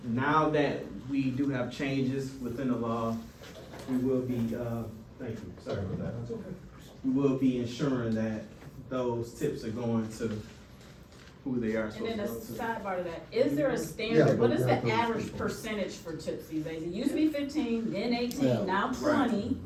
Now that we do have changes within the law, we will be, thank you, sorry about that. We will be ensuring that those tips are going to who they are. And then a sidebar to that, is there a standard, what is the average percentage for tips these days? It used to be 15, then 18, Yeah. now 20.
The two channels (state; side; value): identical; both; correlation 1.00